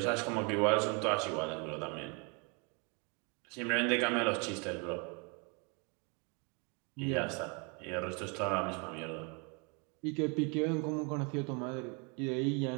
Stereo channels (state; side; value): quieter; left; 33.5 dB